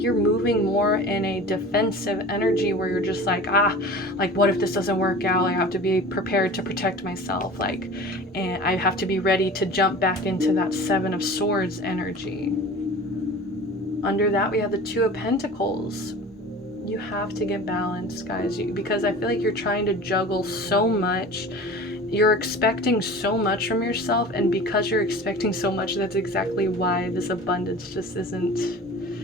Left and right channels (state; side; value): normal; both; correlation 0.39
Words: you're moving more in a defensive energy where you're just like, like what if this doesn't work out? I have to be prepared to protect myself, like, and I have to be ready to jump back into that Seven of Swords energy. Under that, we have the Two of Pentacles. You have to get balanced, guys, because I feel like you're trying to juggle so much. You're expecting so much from yourself, and because you're expecting so much, that's exactly why this abundance just isn't...